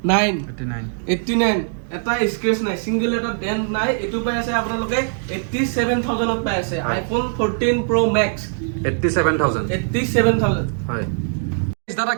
এটা স্ক্ৰেচ নাই সিঙ্গেল এটা ডেন্ট নাই এটো পাই আছে আপোনালোকে 87000ত পাই আছে আইফোন 14 প্ৰ মেক্স 87000 হয় দাদা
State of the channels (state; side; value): silent; left; digital silence